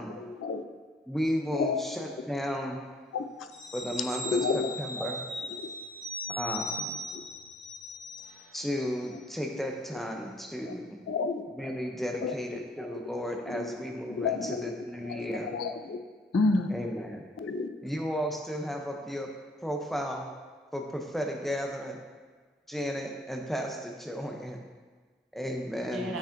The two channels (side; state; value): both; normal; correlation 0.60